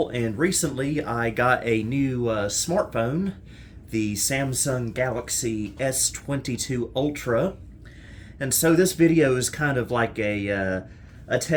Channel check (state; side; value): identical; both; correlation 1.00